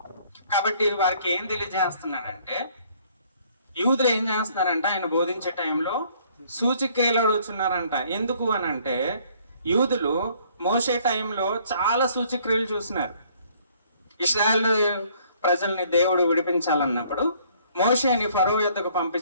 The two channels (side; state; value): both; inverted; correlation -0.61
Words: కాబట్టి వారికి ఏం తెలియజేస్తున్నాడంటే, యూదులు ఏం చేస్తున్నారంట, ఆయన బోధించే టైంలో సూచిక్రియలు అడుగుతున్నారంట. ఎందుకు అని అంటే యూదులు మోసే టైంలో చాలా సూచిక్రియలు చూస్తున్నారు. ఇశ్రాయేలు ప్రజల్ని దేవుడు విడిపించాలన్నప్పుడు మోషేని ఫరో యొద్దకు